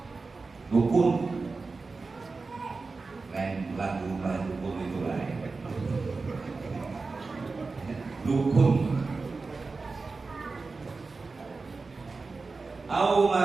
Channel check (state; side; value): quieter; left; 4.0 dB